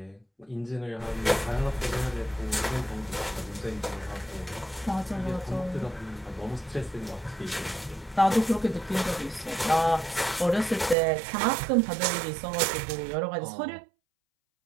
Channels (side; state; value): left; drops out; at 11.0 s